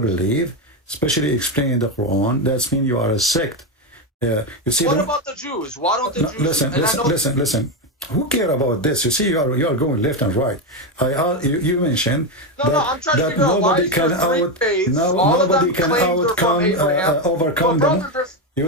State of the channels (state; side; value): normal; both; correlation 0.10